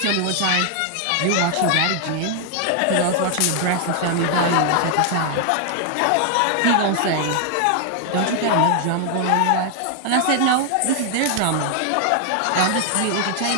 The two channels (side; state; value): both; different; correlation 0.00